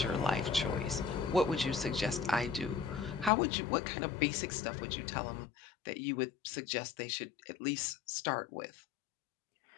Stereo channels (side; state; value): right; drops out; at 3.3 s